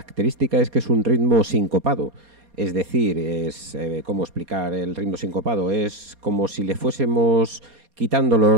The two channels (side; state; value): left; late; 4.2 ms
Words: es que es un ritmo sincopado. Es decir, ¿cómo explicar el ritmo sincopado? Es como si le fuésemos quitando